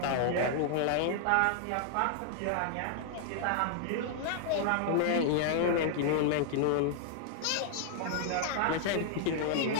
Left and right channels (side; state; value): both; different; correlation -0.01